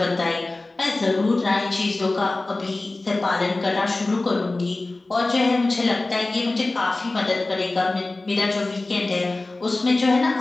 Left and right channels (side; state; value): right; quieter; 3.1 dB